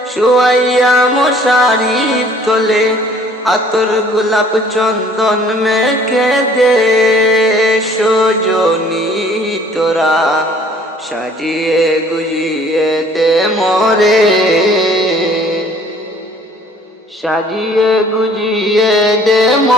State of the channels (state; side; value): normal; both; correlation 0.55